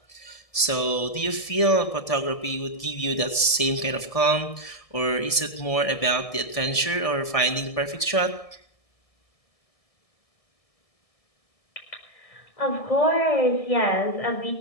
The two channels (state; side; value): late; right; 1.7 ms